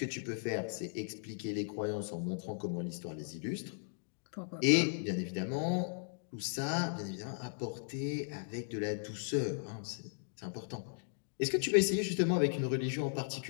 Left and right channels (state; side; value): silent; right; digital silence